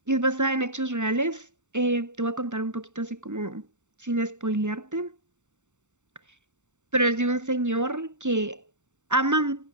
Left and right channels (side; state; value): left; late; 0.84 ms